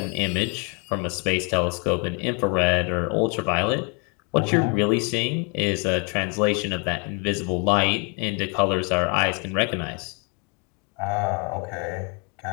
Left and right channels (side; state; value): right; quieter; 32.9 dB